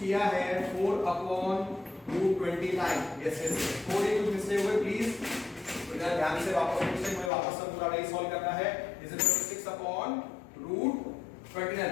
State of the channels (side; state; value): right; drops out; at 7.3 s